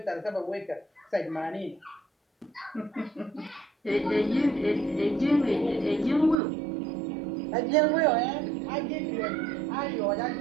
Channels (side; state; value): left; drops out; at 6.4 s